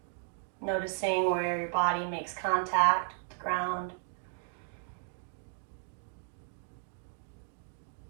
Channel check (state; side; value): silent; left; digital silence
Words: Noticing where your body makes contact with the ground.